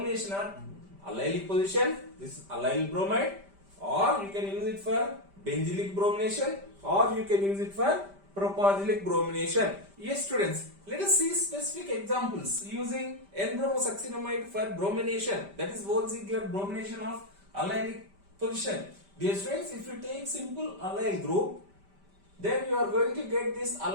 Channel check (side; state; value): left; late; 5.1 ms